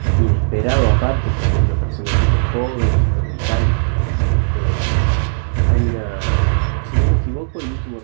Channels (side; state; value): left; silent; 68 dB below the other